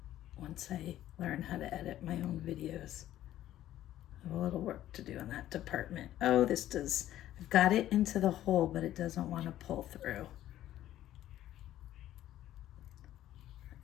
once I learn how to edit my own videos. I have a little work to do in that department. Oh, I've got it into the hole, but it doesn't want to pull through.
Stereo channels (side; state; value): right; quieter; 13.1 dB